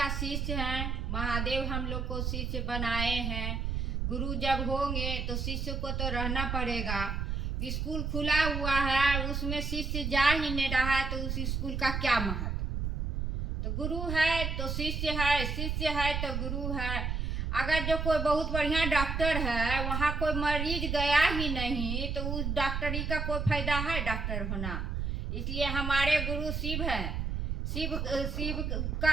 शिष्य हैं। महादेव हम लोग को शिष्य बनाए हैं। गुरु जब होंगे तो शिष्य को तो रहना पड़ेगा। स्कूल खुला हुआ है, उसमें शिष्य जा ही नहीं रहा है तो उस स्कूल का क्या महत्व। तो गुरु है तो शिष्य है, शिष्य है तो गुरु है। अगर जो कोई बहुत बढ़िया डॉक्टर है, वहाँ कोई मरीज गया ही नहीं तो उस डॉक्टरी का कोई फायदा है डॉक्टर होना। इसलिए हमारे गुरु शिव है। शिव शिव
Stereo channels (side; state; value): right; noise; rumble, 1 dB below the sound